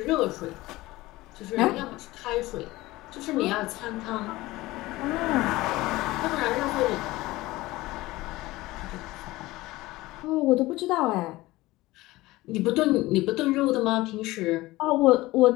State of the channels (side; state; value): right; quieter; 19.1 dB